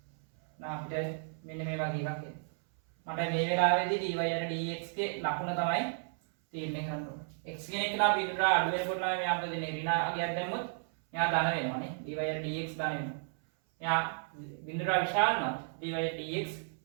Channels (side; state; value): left; silent; 56 dB below the other